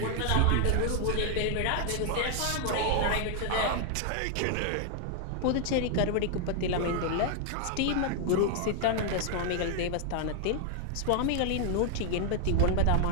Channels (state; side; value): different; both; correlation 0.00